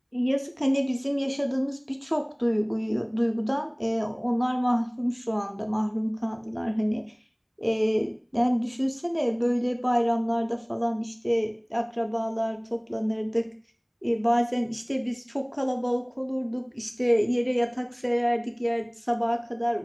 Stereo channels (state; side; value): identical; both; correlation 1.00